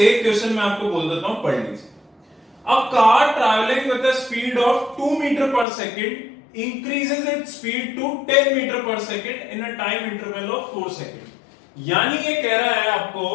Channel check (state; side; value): drops out; right; at 5.7 s